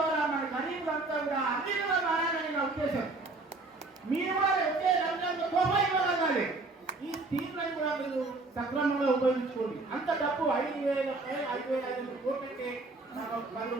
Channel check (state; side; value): quieter; left; 3.3 dB